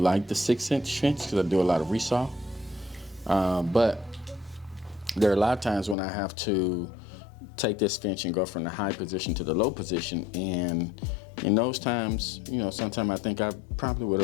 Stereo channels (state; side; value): drops out; right; at 6.0 s